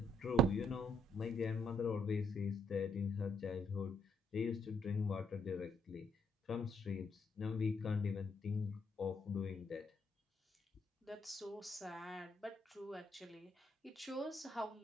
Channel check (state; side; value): normal; both; correlation 0.71